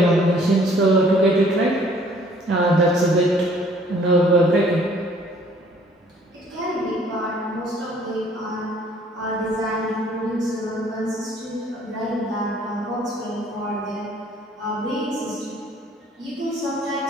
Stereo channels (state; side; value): normal; both; correlation 0.58